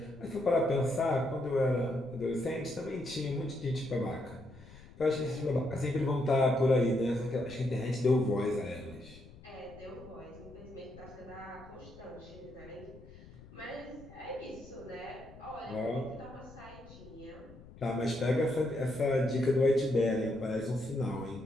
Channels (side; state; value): left; noise; rumble, 19 dB below the sound